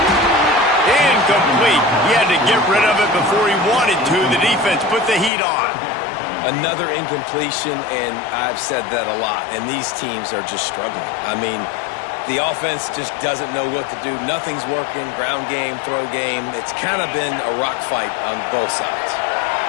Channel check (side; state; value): right; drops out; at 5.3 s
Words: Incomplete. He had to get rid of it before he wanted to. The defense put the heat on. Another incompletion, and I've said that a lot, and these teams are just struggling. I mean, the offense just doesn't know what to do. Nothing's working, ground game, throw game. It's kind of been a rock fight on both sides.